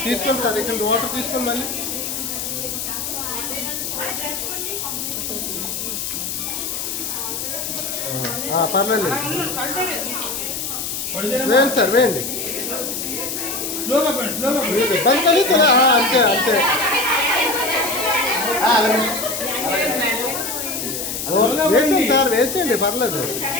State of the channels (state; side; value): noise; left; hiss, 4 dB below the sound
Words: తీసుకోండి సార్. ఇక్కడ వాటర్ తీసుకోండి మళ్ళీ. పర్లేదు, వేయండి సార్, వేయండి. బంద్ కానీ అంతే అంతే. వేసేయండి సార్, వేసేయండి, పర్లేదు